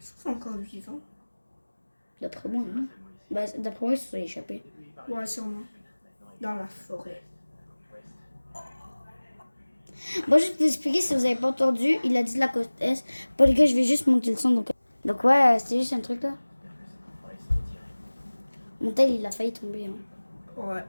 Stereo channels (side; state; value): both; inverted; correlation -1.00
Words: sont encore vivants. D'après moi, non. Bah, d'après moi, ils se sont échappés. Ouais, sûrement. Dans la forêt. Bon, juste pour vous expliquer, si vous avez pas entendu, il a dit de la côte Est. Bon, les gars, je vais juste monter le son. Donc ouais, c'était juste un truc là. Mon tel, il a failli tomber. Hein. Ouais.